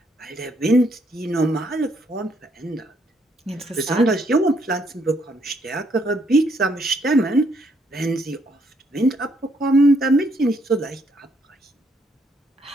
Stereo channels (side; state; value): both; normal; correlation 0.71